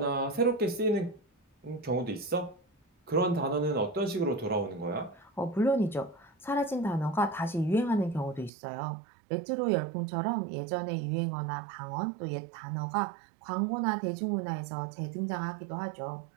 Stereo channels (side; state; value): left; drops out; at 8.5 s